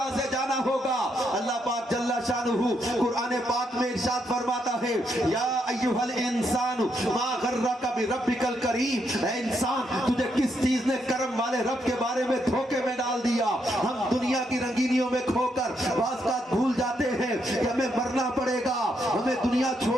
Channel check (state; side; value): normal; both; correlation 0.78